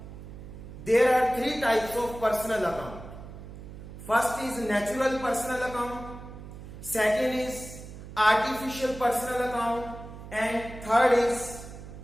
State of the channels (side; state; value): right; noise; hum, 13 dB below the sound